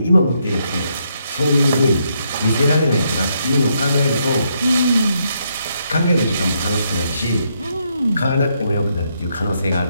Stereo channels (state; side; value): inverted; both; correlation -0.76